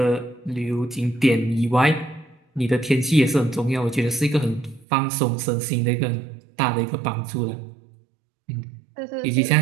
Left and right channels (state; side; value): drops out; left; at 4.9 s